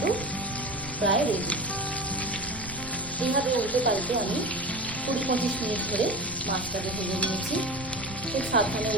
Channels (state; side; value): noise; right; rumble, 14 dB below the sound